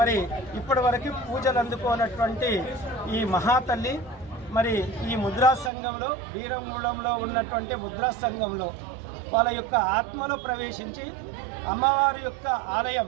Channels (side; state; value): left; drops out; at 5.7 s